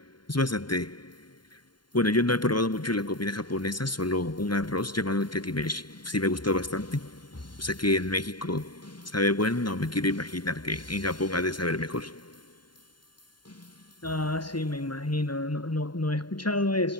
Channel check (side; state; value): right; late; 0.72 ms